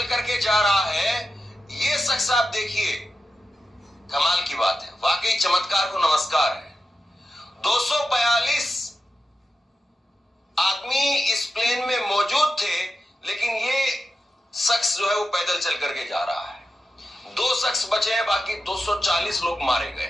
करके जा रहा है। ये शख्स आप देखिए, कमाल की बात है, वाकई चमत्कार को नमस्कार है। 242 आदमी इस प्लेन में मौजूद थे, लेकिन ये शख्स जो है वो पैदल चल करके जा रहा है। 2 शख्स बचे हैं, बाकी 240 लोग मारे गए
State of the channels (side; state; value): both; normal; correlation 0.91